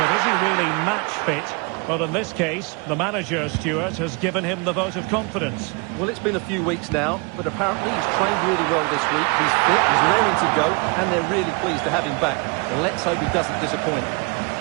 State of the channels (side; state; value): left; quieter; 30.0 dB